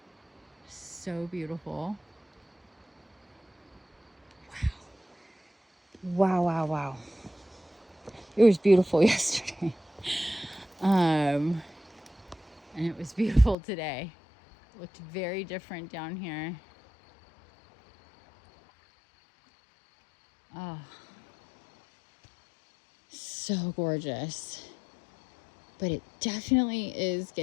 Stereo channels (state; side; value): drops out; right; at 13.6 s